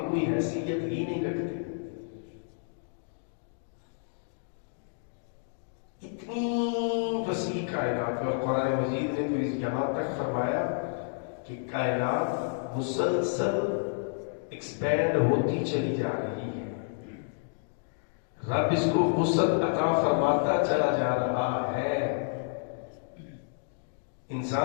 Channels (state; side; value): silent; right; digital silence